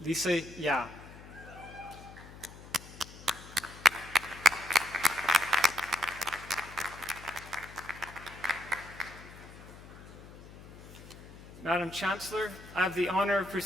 Lisa Ya. Madam Chancellor, I have the honor of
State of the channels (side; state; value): left; noise; hum, 17 dB below the sound